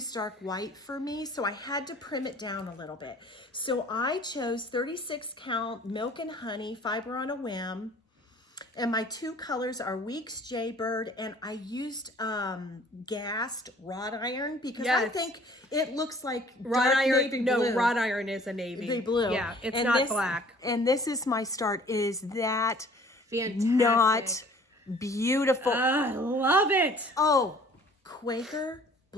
white for me, so I had to prim it down a little bit. So I chose 36 count Milk and Honey Fiber on a Whim. And my 2 colors are Weeks Jaybird, and I used gassed wrought iron, because I think it looks like wrought dark iron. navy No, blue. wrought iron is a navy Blue. Yeah, it's And not black. And this is my start. Is that Fantastic. not beautiful? I love it. Oh, Quaker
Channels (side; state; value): both; normal; correlation 0.53